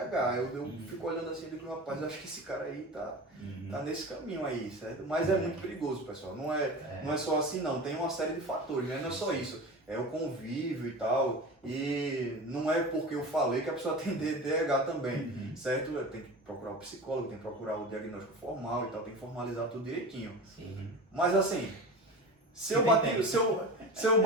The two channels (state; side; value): normal; both; correlation 0.32